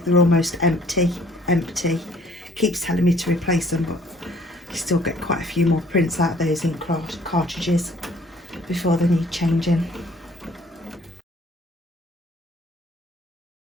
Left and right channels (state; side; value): normal; both; correlation 0.58